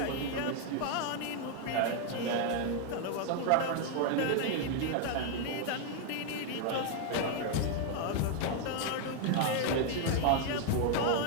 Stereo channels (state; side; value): different; both; correlation 0.01